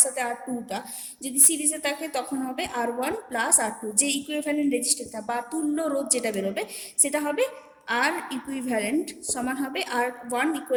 সাথে আর টুটা যদি সিরিজে থাকে, তখন হবে R one plus R two, যে ইকুইভ্যালেন্ট রেজিস্টারটা বা তুল্য রোধ যেটা বেরোবে, সেটা হবে আর ইকুইভ্যালেন্ট সমান হবে R one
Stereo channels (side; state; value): both; identical; correlation 1.00